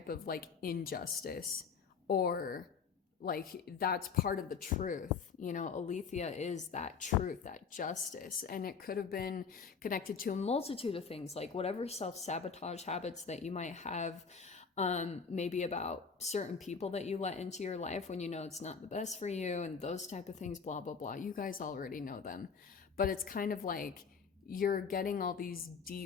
of like injustice, or like that's part of the truth. You know, Aletheia is that truth, that justice. And it could have been connected to a multitude of things, like whatever self-sabotage habits that you might have, maybe about certain people that you let into your life when you know it's not the best for you, and those type of things, blah, blah, blah. You guys already know them. But it's kind of like you're getting all these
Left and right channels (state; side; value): quieter; right; 5.8 dB